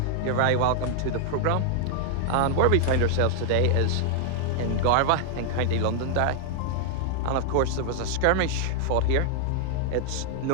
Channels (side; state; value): both; different; correlation 0.00